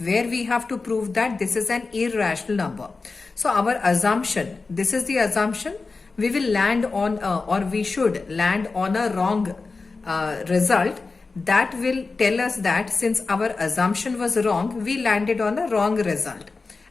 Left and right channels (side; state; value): right; quieter; 4.0 dB